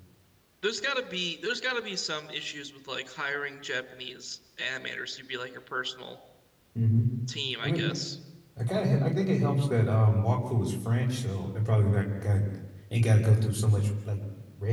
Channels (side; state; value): both; identical; correlation 1.00